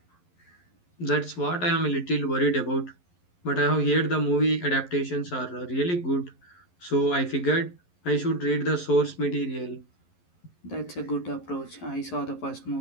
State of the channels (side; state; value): right; late; 11 ms